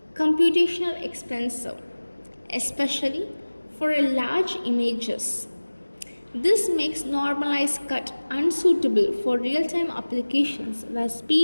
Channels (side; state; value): both; inverted; correlation -1.00